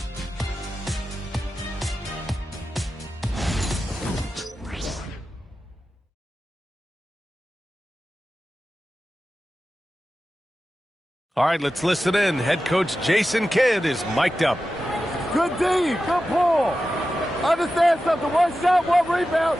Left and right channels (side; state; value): both; normal; correlation 0.93